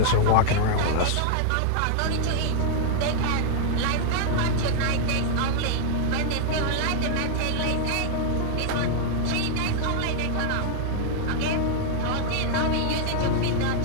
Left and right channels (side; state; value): both; different; correlation 0.00